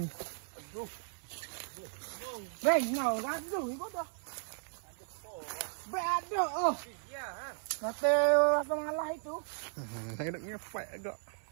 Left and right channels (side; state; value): left; silent; digital silence